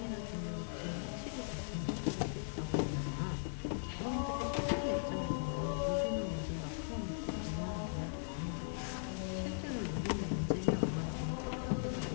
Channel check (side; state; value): right; silent; digital silence